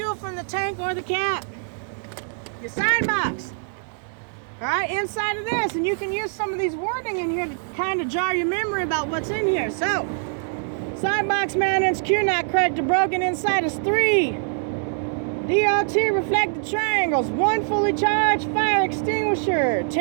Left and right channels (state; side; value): silent; left; 58 dB below the other